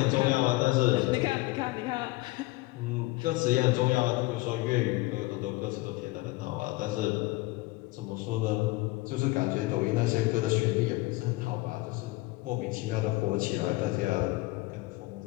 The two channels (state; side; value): quieter; right; 21.2 dB